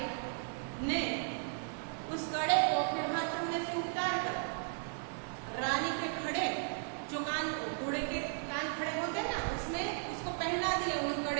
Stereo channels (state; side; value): silent; left; 54 dB below the other